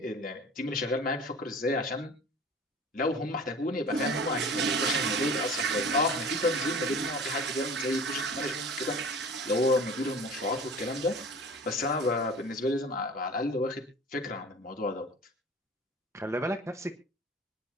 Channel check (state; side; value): normal; both; correlation 0.41